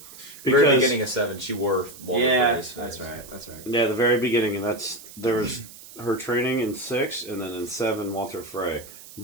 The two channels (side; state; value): right; noise; hiss, 18 dB below the sound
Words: Very Because beginning of 7, she wore Walter Yeah, Frey's that's face. right. That's right. yeah, the very beginning, and there was her training in 6, and then in 7, Walter Frey.